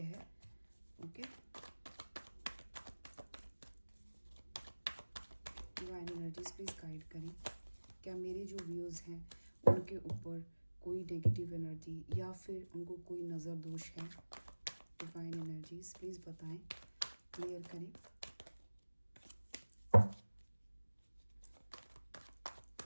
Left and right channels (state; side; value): inverted; both; correlation -1.00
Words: है, okay. Divine energies please guide करें। क्या मेरे जो व्यूज़ हैं उनके ऊपर कोई नेगेटिव एनर्जी या फिर उनको कोई नज़र दोष है? डिवाइन एनर्जीज प्लीज़ बताएं, क्लियर करें।